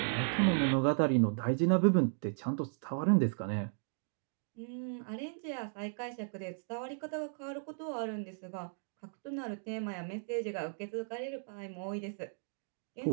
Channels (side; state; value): left; silent; digital silence